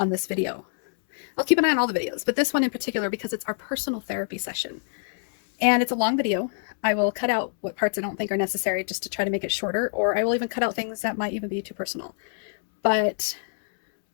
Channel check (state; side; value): silent; right; 61 dB below the other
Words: this video. I'll keep an eye on all the videos, but this one in particular because it's our personal therapy session. And it's a long video. I will cut out what parts I don't think are necessary just to try to make it shorter, or I will even cut out things that might even be too personal. But